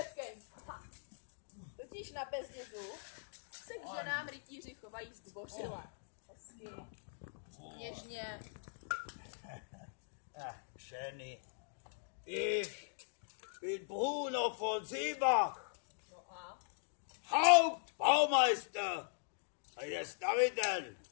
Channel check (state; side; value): silent; right; digital silence